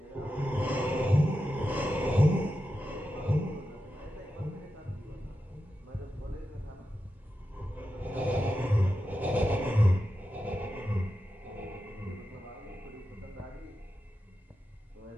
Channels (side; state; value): both; normal; correlation 0.90